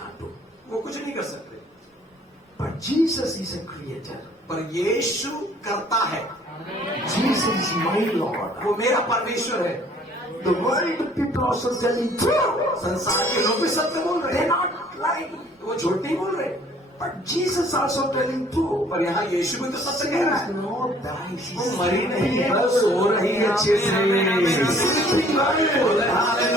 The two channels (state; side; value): normal; both; correlation 0.57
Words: do. वो कुछ नहीं कर सकते। But Jesus is a creator. पर यीशु करता है, Jesus is my Lord. वो मेरा परमेश्वर है। The world people also telling true. संसार के लोग भी सत्य बोल रहे They're हैं, not lying. वो झूठ नहीं बोल रहे। But Jesus also telling true. पर यहाँ यीशु भी तो सत्य कह रहा है। Lord dies. वो मरी नहीं है, वो सो रही है अच्छे से।